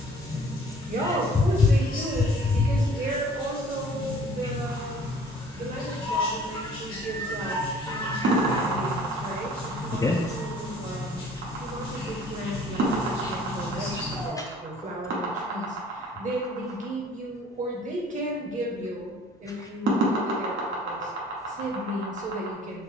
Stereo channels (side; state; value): both; normal; correlation 0.52